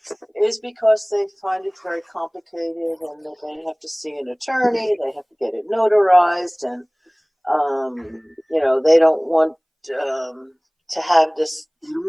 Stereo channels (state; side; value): identical; both; correlation 1.00